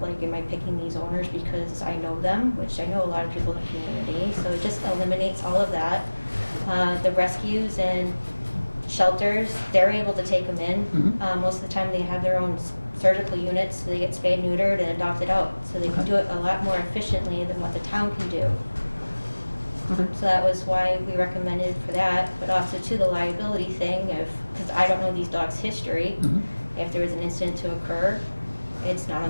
am I picking these owners because I know them, which I know a lot of people in the community, so it just eliminates all of that. The rescues and shelters, they're able to take them in. Most of the time they have their own surgical units, so they get spayed, neutered, and adopted out. So they can do it a lot more efficiently than what the town can do. So that was why we recommended for that, but also to the liability thing, because I don't know these dogs' history. If there was an incident to occur, it's not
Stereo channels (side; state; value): both; inverted; correlation -1.00